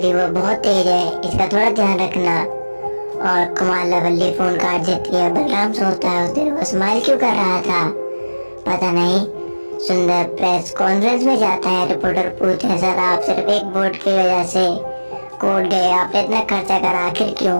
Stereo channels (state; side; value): inverted; both; correlation -1.00